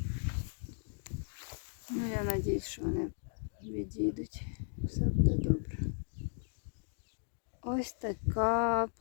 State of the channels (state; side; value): silent; right; digital silence